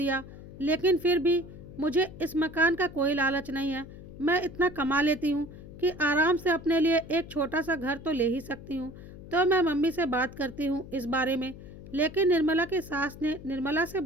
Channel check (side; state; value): left; noise; hum, 15 dB below the sound